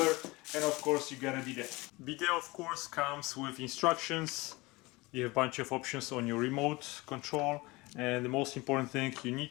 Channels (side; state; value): right; quieter; 22.7 dB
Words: and of course you got a bidet. Bidet of course comes with instructions. You have a bunch of options on your remote control, and the most important thing, you